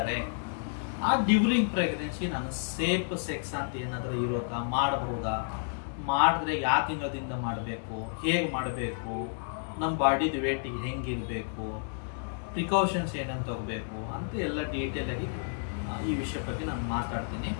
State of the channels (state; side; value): silent; right; digital silence